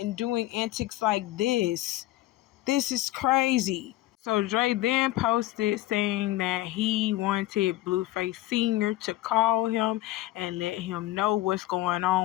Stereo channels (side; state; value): right; quieter; 16.4 dB